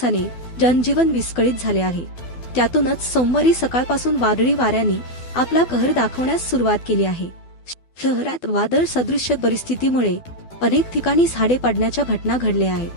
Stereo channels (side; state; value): right; late; 12 ms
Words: जनजीवन विस्कळीत झाले आहे। त्यातूनच सोमवारी सकाळपासून वादळी वाऱ्यांनी आपला कहर दाखवण्यास सुरुवात केली आहे। शहरात वादळ सदृश्य परिस्थितीमुळे अनेक ठिकाणी झाडे पडण्याच्या घटना घडल्या